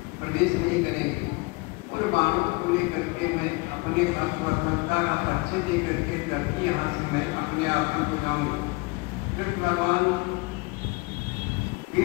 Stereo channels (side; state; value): right; quieter; 26.4 dB